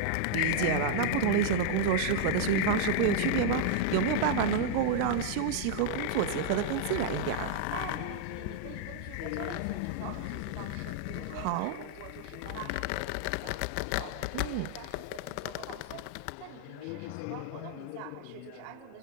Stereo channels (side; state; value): both; different; correlation -0.01